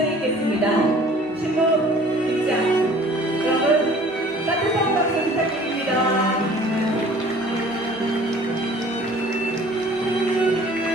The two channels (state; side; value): normal; both; correlation 0.51